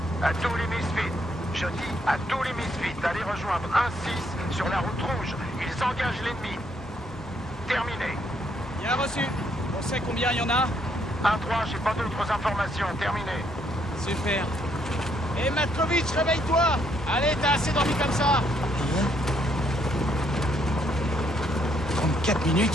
À tous les Misfits, je dis à tous les Misfits d'aller rejoindre 1-6 sur la route rouge. Ils engagent l'ennemi. Terminé. Bien reçu. On sait combien il y en a? 1-3, j'ai pas d'autres informations. Terminé. Super. Hé Matkovitch, réveille-toi! Allez, t'as assez dormi comme ça! 34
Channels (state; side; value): normal; both; correlation 0.71